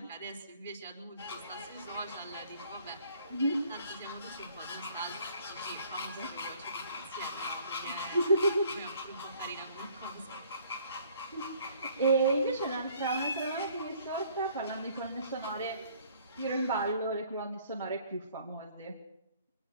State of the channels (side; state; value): both; inverted; correlation -0.58